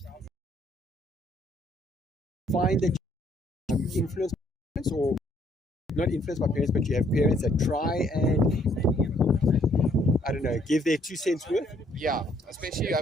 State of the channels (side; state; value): both; normal; correlation 0.66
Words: Find that you influence parents, or not influenced by parents, but you have parents that try and, I don't know, give their 2 cents worth. Yeah, especially I